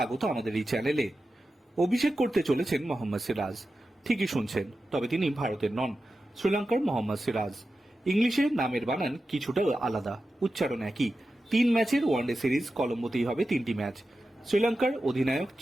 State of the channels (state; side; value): normal; both; correlation 0.92